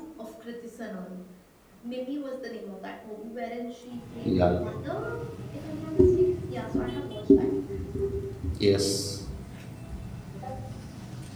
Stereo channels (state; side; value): identical; both; correlation 1.00